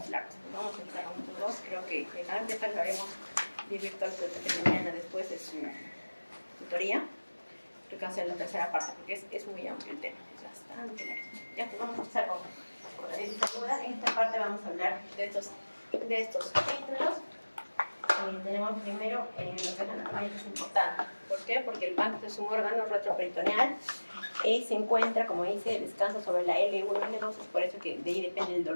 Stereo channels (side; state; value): both; inverted; correlation -1.00